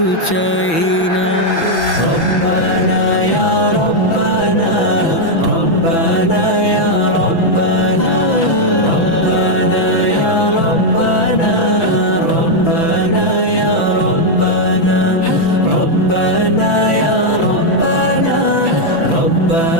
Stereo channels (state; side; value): late; right; 6.0 ms